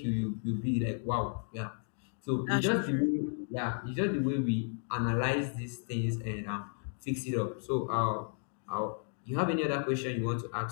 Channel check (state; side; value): silent; right; 55 dB below the other